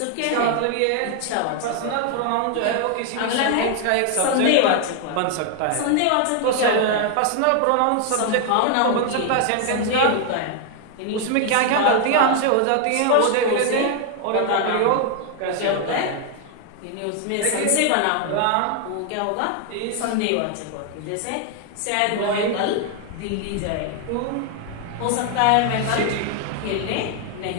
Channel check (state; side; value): different; both; correlation 0.00